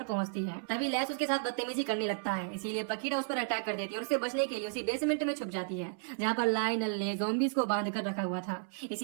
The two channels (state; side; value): silent; left; 56 dB below the other